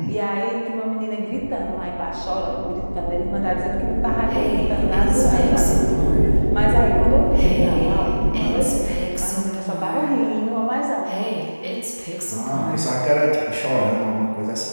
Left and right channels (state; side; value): inverted; both; correlation -1.00